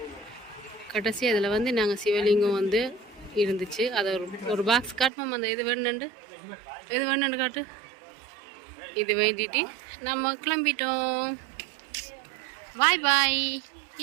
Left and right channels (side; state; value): left; drops out; at 5.1 s